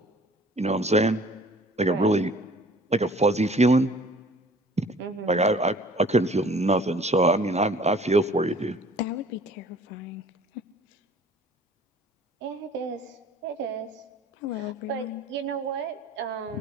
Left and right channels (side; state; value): both; normal; correlation 0.51